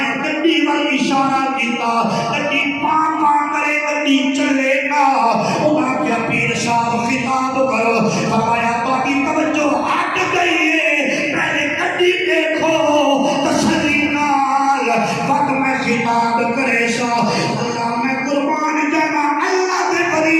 گڈی وال اشارہ کیتا گڈی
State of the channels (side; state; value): both; identical; correlation 1.00